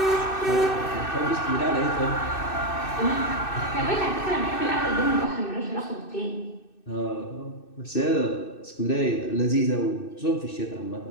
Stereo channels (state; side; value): late; right; 2.6 ms